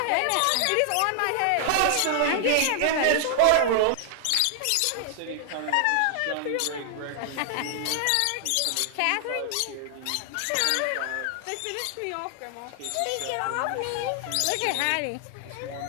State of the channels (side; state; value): both; different; correlation 0.00